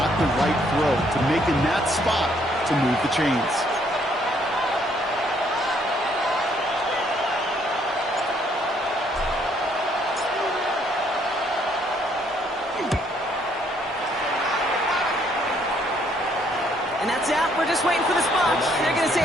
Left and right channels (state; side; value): normal; both; correlation 0.67